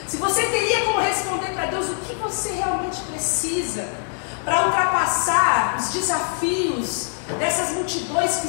se você teria como responder para Deus o que você realmente precisa para ultrapassar os desafios dessas multidões que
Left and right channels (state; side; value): silent; right; 64 dB below the other